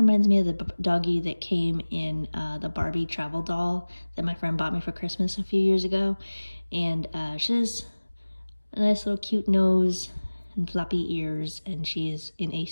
me of the doggy that came in the Barbie travel doll that my friend bought me for Christmas a few years ago. And she has a nice little cute nose and floppy ears, and she is in a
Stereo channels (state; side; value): inverted; both; correlation -1.00